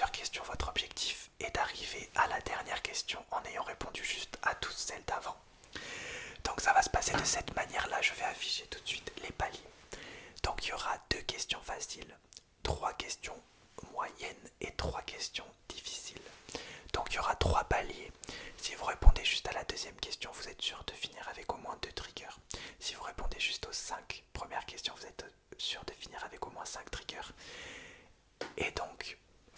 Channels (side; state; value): both; identical; correlation 1.00